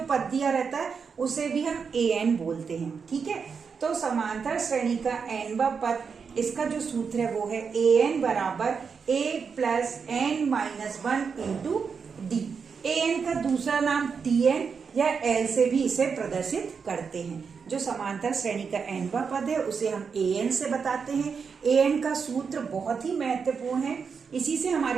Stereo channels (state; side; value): quieter; left; 5.8 dB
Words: पद दिया रहता है उसे भी हम an बोलते हैं। ठीक है, तो समांतर श्रेणी का nवां पद, इसका जो सूत्र है वो है an बराबर a plus n minus 1 into D. an का दूसरा नाम tn या l से भी इसे प्रदर्शित करते हैं। जो समांतर श्रेणी का nवां पद है उसे हम an से बताते हैं। an का सूत्र बहुत ही महत्वपूर्ण है, इसी से